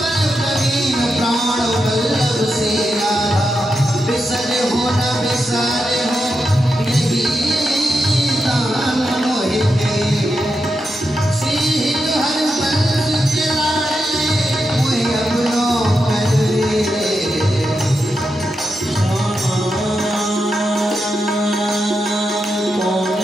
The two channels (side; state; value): both; normal; correlation 0.86